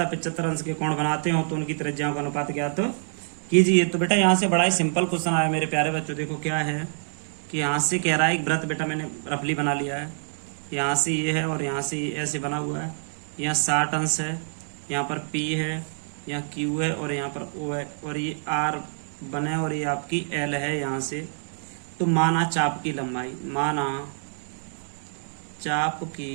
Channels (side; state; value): left; silent; digital silence